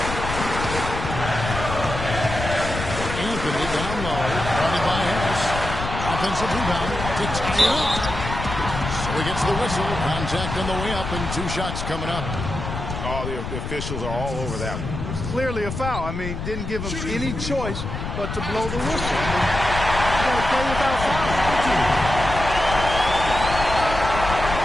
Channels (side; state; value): left; noise; rumble, 6 dB below the sound